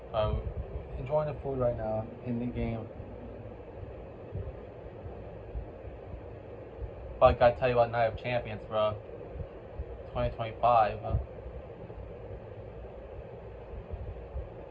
I'm enjoying the food right now in the game. But I gotta tell you about Night of Champions, bro. 2025.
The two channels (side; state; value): both; identical; correlation 1.00